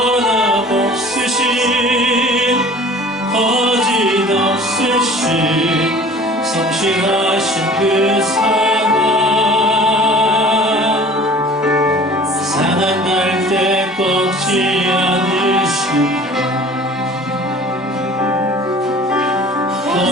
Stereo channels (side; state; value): both; normal; correlation 0.46